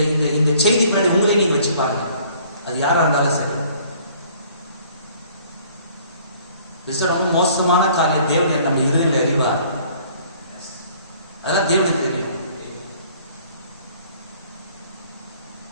இந்த இந்த செய்தி முன்னாடி உங்களே நீங்க வச்சு பாருங்க. அது யாரா இருந்தாலும் சரி. ரொம்ப மோசமான காரியம். தேவன் நம்ம இருதயத்தில் அறிவார். அதெல்லாம் தேவனுக்கு தெரியும்.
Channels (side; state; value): both; inverted; correlation -0.56